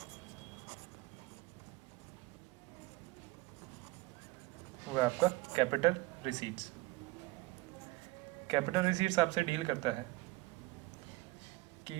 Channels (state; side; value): quieter; left; 20.9 dB